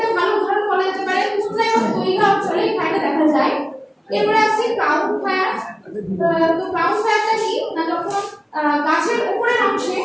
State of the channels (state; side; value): identical; both; correlation 1.00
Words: ভালো উদাহরণ বলা যেতে পারে টুন্ড্রা এবং টুইগা অঞ্চলে এই ফায়ারটা দেখা যায়। এরপরে আসছে ক্রাউন ফায়ার। তো ক্রাউন ফায়ারটা কি না, যখন গাছের উপরের অংশে